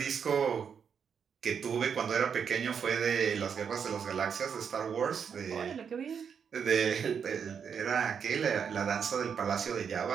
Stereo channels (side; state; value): left; quieter; 7.0 dB